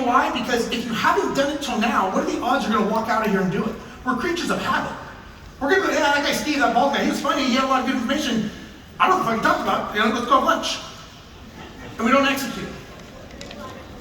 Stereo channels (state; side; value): identical; both; correlation 1.00